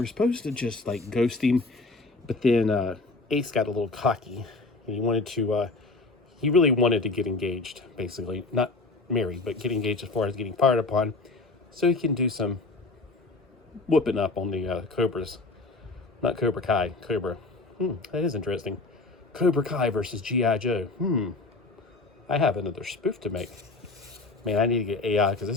supposed to just like ghost him, but then Ace got a little cocky and he really wanted to get engaged, basically. Not married, but get engaged as far as getting fired upon, so he can do some whooping up on the Cobras. Not Cobra Kai, Cobra. That is interesting. Cobra Kai versus G.I. Joe. I have another spoof to make. Man, I need to get AI, because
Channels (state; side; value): quieter; right; 3.4 dB